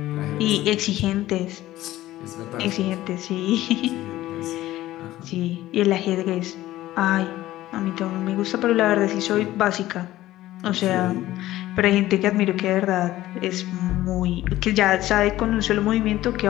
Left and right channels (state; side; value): quieter; right; 15.4 dB